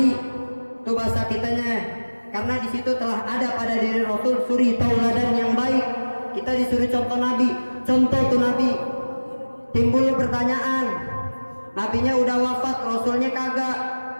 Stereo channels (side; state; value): both; inverted; correlation -1.00